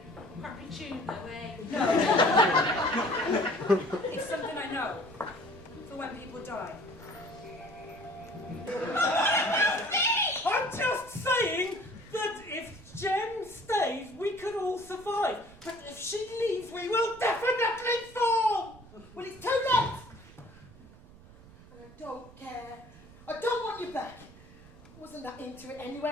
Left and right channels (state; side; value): noise; right; rumble, 21 dB below the sound